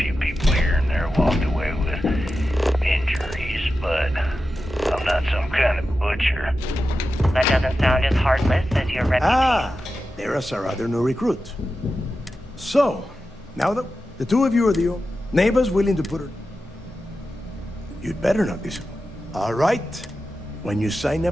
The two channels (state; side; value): normal; both; correlation 0.92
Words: people here and there walked away with injuries, but I'm not some kind of butcher. That doesn't sound as heartless as your reputation. Ah, there's our other new recruit. So, now that the two of you are the neighbors willing to put her... You'd better not disappoint. All right. When you sign